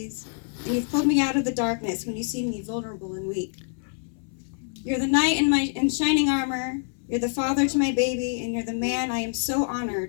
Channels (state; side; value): silent; right; 61 dB below the other